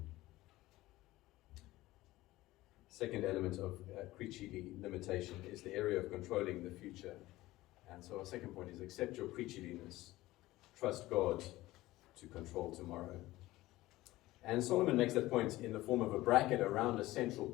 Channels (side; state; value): right; quieter; 17.6 dB